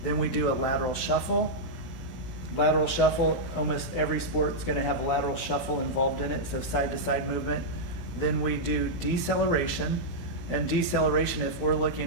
then we do a lateral shuffle. Lateral shuffle, almost every sport is going to have a lateral shuffle involved in it, so side to side movement. Then we do deceleration. And deceleration, if we're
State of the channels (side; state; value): right; late; 16 ms